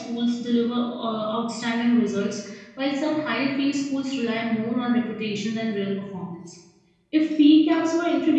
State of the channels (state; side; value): identical; both; correlation 1.00